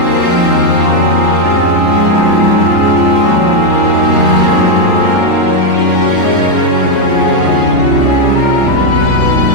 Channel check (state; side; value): late; right; 3.4 ms